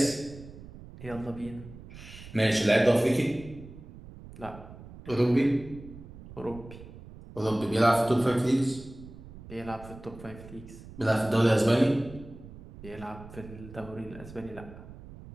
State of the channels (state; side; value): noise; right; rumble, 16 dB below the sound